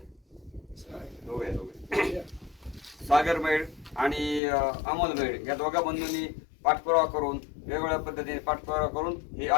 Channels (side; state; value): right; drops out; at 4.4 s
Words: सागर मैड आणि अमोल मैड या दोघा बंधूंनी पाठपुरावा करून वेगवेगळ्या पद्धतीने पाठपुरावा करून हे